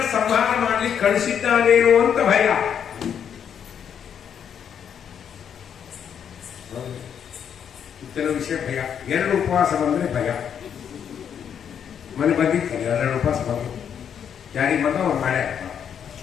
ಸಂಹಾರ ಮಾಡ್ಲಿಕ್ಕೆ ಕಳಿಸಿದ್ದಾನೇನೋ ಅಂತ ಭಯ. ಕೆಲವು ವಿಷಯ ಭಯ. ಎರಡು ಉಪವಾಸ ಬಂದ್ರೆ ಭಯ. ಮನೆ ಬಂದಿರ್ತಾರೆ, ಎರಡು ಉಪವಾಸ ಬಂದು ಯಾರಿಗೆ ಬಂದ ಅವ್ರು ಮಳೆ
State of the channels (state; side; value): quieter; right; 8.2 dB